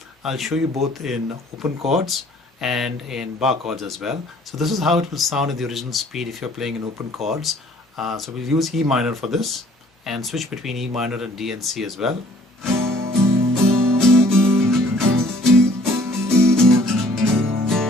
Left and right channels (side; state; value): both; normal; correlation 0.56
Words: I'll show you both in open chords and in bar chords as well. So this is how it will sound in the original speed if you're playing in open chords. So we'll use E minor for this and switch between E minor and D and C as well.